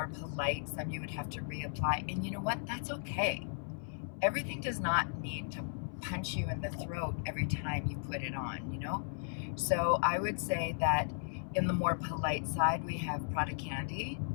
polite, some you would have to reapply. And you know what? That's okay. Everything does not need to punch you in the throat every time you put it on, you know? So I would say that in the more polite side, we have Prada Candy,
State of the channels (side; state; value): right; silent; 54 dB below the other